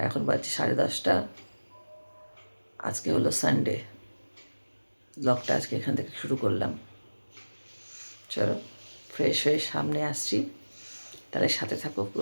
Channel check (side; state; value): both; inverted; correlation -1.00